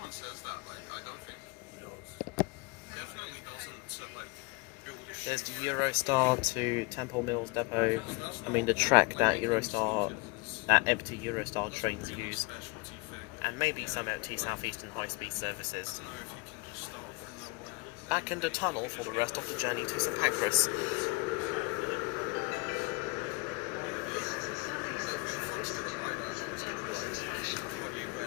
says that, I don't think it does. Definitely doesn't. So, build a There's the Eurostar to Temple Mills Depot. I mean, the track that empty Eurostar trains use. And maybe some empty Southeastern high-speed services. Back in the tunnel for the rest of the journey to St Pancras.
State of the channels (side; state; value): right; quieter; 26.6 dB